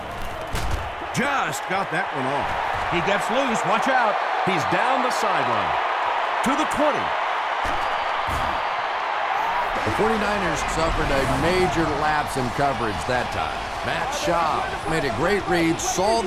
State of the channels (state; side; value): identical; both; correlation 1.00